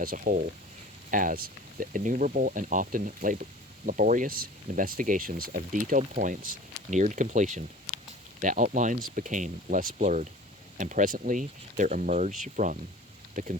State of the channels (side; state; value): both; normal; correlation 0.43